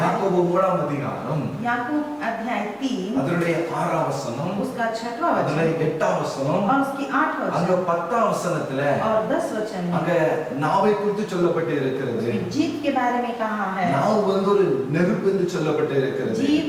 யாக்கோபு 3ஆம் அதிகாரம் याकूब अध्याय 3 அதனுடைய 6ஆம் வசனம், उसका 6वां அதனுடைய वचन 8ஆம் வசனம், और उसकी 8वां அங்க वचन 10ஆம் வசனத்துல और 10 वचन அங்க में நாவை குறித்து சொல்லப்பட்டு இருக்கிறது. जीभ के बारे में कहा है। நாவு வந்து ஒரு நெருப்பு என்று சொல்லப்பட்டு இருக்கிறது. जीभ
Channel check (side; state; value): both; identical; correlation 1.00